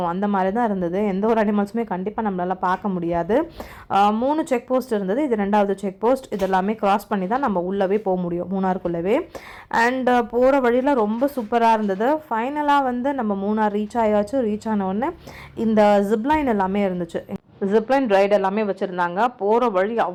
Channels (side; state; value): both; identical; correlation 1.00